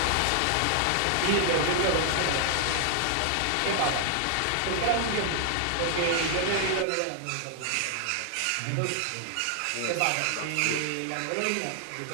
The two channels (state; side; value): different; both; correlation 0.00